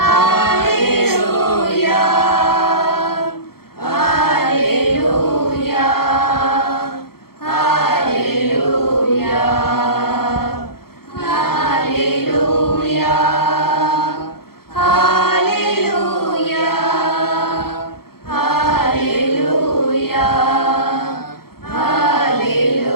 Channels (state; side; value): late; right; 0.94 ms